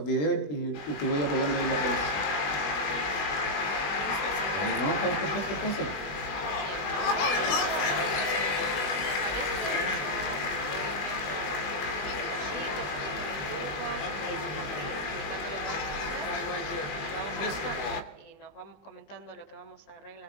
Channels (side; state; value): right; late; 20 ms